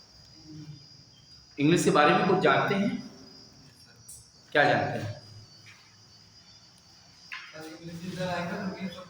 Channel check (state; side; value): identical; both; correlation 1.00